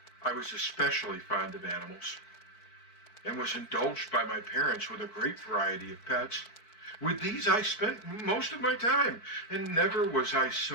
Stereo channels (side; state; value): right; late; 4.6 ms